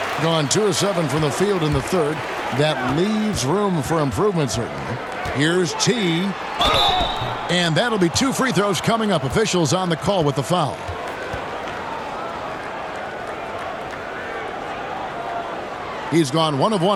Gone 2 of 7 from the field in the third. That leaves room for improvement, certainly. Here's T. And that'll be 2 free throws coming up. Officials on the call with the foul. He's gone 1 of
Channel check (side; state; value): both; identical; correlation 1.00